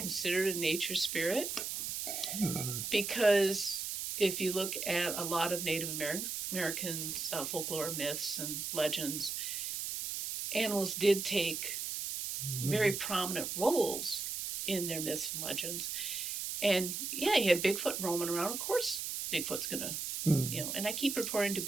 a nature spirit, because if you look at a lot of Native Americans' folklore, myths, and legends, animals did take very prominent roles in their myths and legends. And you had Bigfoot roaming around. Of course, Bigfoot's gonna, and I keep referring to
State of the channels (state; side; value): noise; right; hiss, 3 dB below the sound